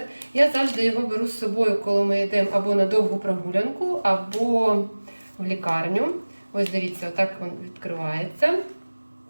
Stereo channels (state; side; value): inverted; both; correlation -1.00